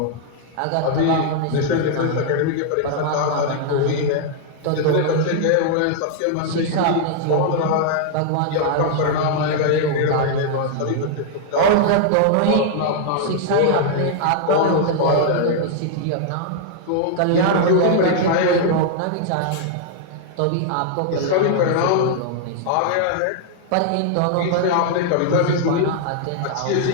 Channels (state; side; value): different; both; correlation -0.01